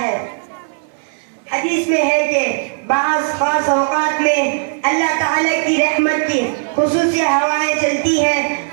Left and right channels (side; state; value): left; silent; digital silence